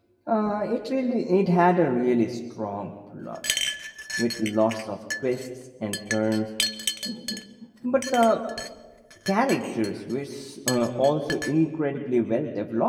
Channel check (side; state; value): both; identical; correlation 1.00